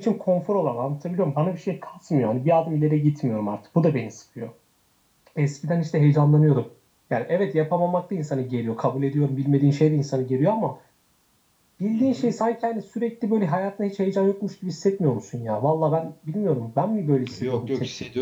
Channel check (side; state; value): both; identical; correlation 1.00